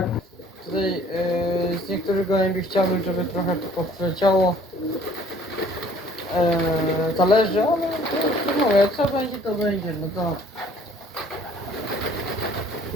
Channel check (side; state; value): both; normal; correlation 0.56